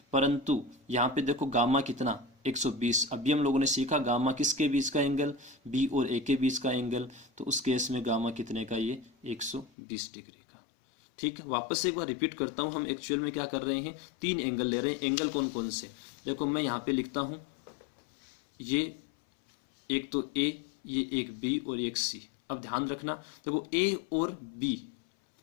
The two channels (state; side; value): drops out; right; at 9.7 s